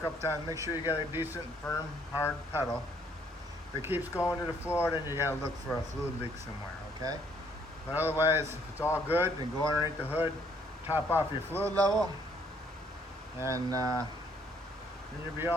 times. Make sure you got a decent, firm, hard pedal. If it keeps going to the floor, then you gotta look for a fluid leak somewhere, okay? But otherwise, if it's all good, then go underneath the hood, top off your fluid level, and then you'll be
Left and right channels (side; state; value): both; normal; correlation 0.66